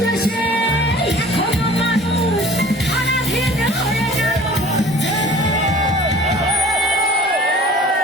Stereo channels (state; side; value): normal; both; correlation 0.46